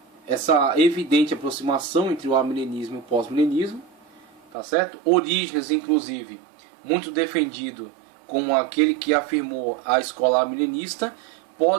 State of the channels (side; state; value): left; drops out; at 4.5 s